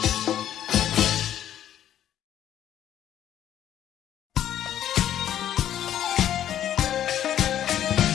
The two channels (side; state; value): right; quieter; 11.1 dB